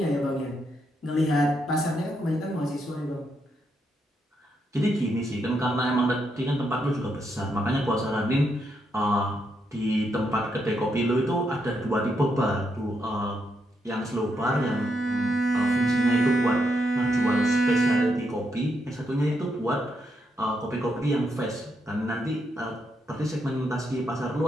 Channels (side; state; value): both; normal; correlation 0.80